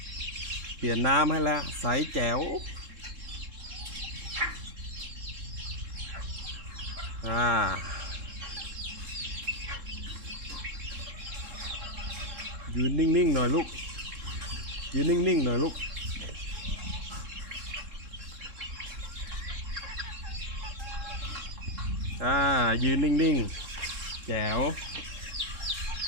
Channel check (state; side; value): late; left; 3.7 ms